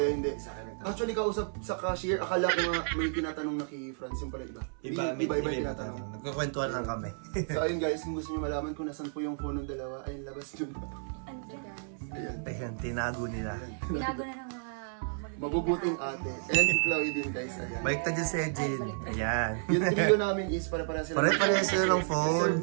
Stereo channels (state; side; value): silent; left; 57 dB below the other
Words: hindi. Sa akin nagtanong. Actually, kausap sa cashier, akala ko nga may tinatanong na kay Franz yung pala iba. Iba tinatanong. Nagkukwentuhan lang kami. So ayun guys, kung gusto niyo malaman kung nasan po yung phone ng dalawa, ayun labas yun. Ayan. Ayan, tinago nila. Tinago na ng mga Mabubuting ate. And si Chloe din guys, ayan. Balik ta dyan si Ejin. Ayan. Yung trio namin is pare-pareha sila. Pare-pareha sila ng phone. Deserve